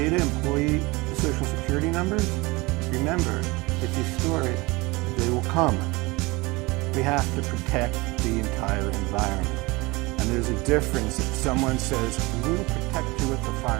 employee social security numbers? Remember, if you store it, they will come. We have to protect the entire environment. And there's a difference if someone says, we'll protect you with the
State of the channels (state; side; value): quieter; left; 23.6 dB